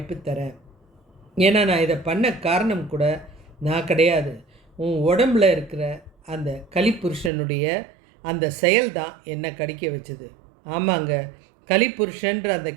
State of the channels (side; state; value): left; drops out; at 7.3 s